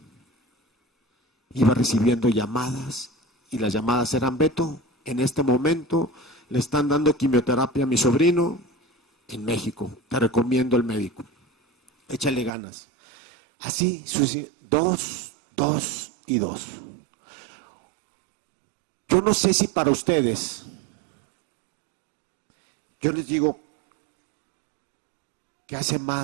iba recibiendo llamadas y las llamadas eran, Beto, en este momento le están dando quimioterapia a mi sobrino en México, te recomiendo el médico, échale ganas. Así, 2 y 2. Yo no sé si para ustedes, yo les digo que hace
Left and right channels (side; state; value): left; drops out; at 12.5 s